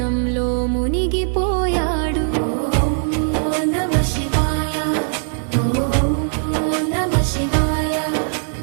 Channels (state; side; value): silent; left; 59 dB below the other